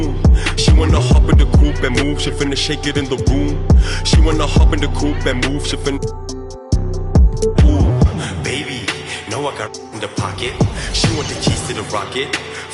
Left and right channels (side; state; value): both; identical; correlation 1.00